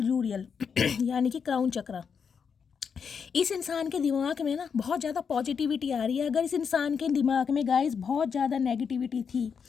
यूरियल यानी कि क्राउन चक्र। इस इंसान के दिमाग में ना बहुत ज़्यादा पॉजिटिविटी आ रही है। अगर इस इंसान के दिमाग में गाइस बहुत ज़्यादा नेगेटिविटी थी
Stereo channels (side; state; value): right; quieter; 6.4 dB